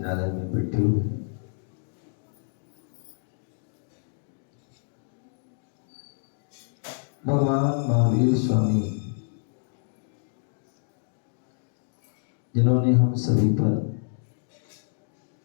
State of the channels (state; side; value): silent; right; digital silence